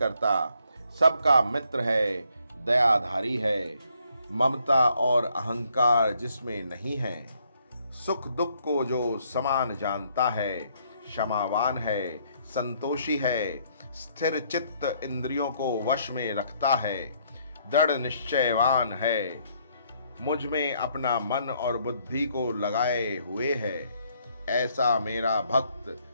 सबका मित्र है, दयाधारी है, ममता और अहंकार जिसमें नहीं है, सुख दुख को जो समान जानता है, क्षमावान है, संतोषी है, स्थिर चित्त इंद्रियों को वश में रखता है, दृढ़ निश्चयवान है, मुझ में अपना मन और बुद्धि को लगाए हुए है, ऐसा मेरा भक्त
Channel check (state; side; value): inverted; both; correlation -0.69